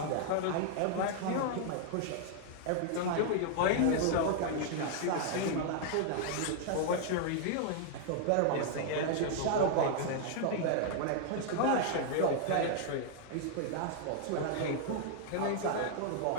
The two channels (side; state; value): both; different; correlation 0.00